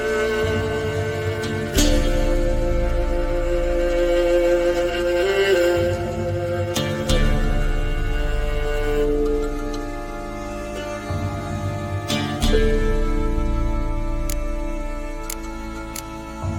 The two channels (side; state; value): both; identical; correlation 1.00